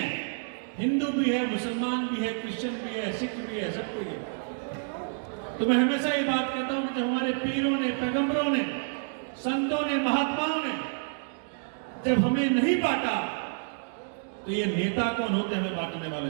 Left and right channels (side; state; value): left; silent; digital silence